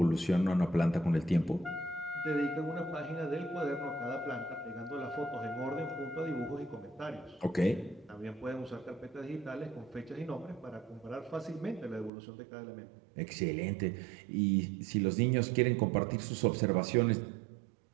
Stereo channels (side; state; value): left; drops out; at 12.1 s